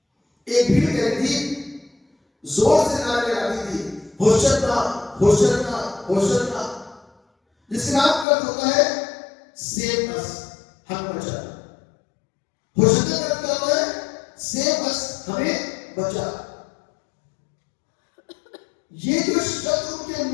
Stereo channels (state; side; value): drops out; right; at 8.2 s